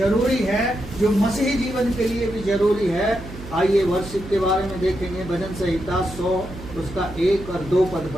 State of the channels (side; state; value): right; noise; hum, 13 dB below the sound